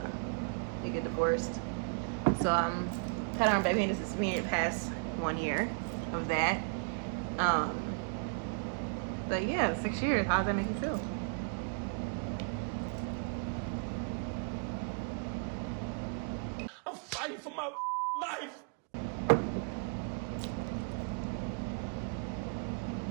you get divorced. So kind of baby, this is me past 1 year of that. But yeah, 6 years. How does that make you feel? I'm fighting for my life.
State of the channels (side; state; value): left; quieter; 39.7 dB